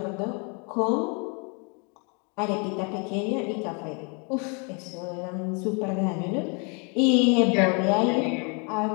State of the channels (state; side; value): quieter; right; 35.1 dB